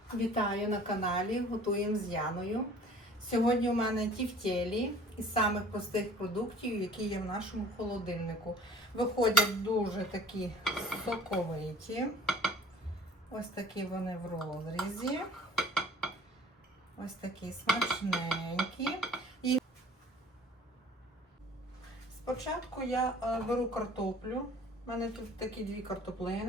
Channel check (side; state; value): both; normal; correlation 0.49